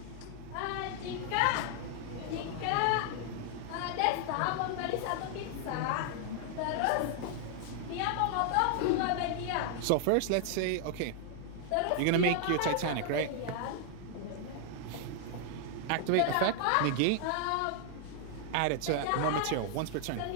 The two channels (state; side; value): different; both; correlation 0.00